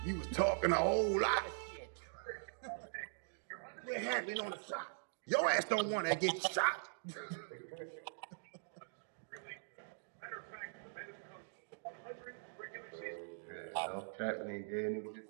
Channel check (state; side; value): silent; left; digital silence